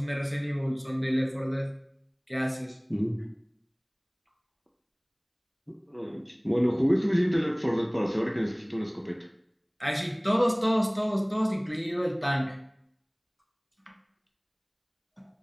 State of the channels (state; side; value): identical; both; correlation 1.00